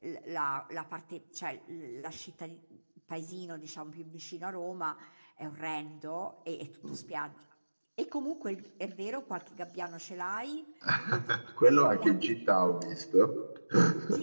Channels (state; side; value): inverted; both; correlation -1.00